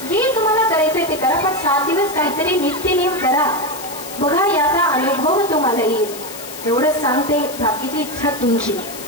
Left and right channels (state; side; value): noise; left; hiss, 12 dB below the sound